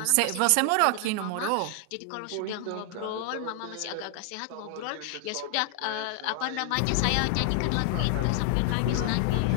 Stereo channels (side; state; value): both; different; correlation 0.00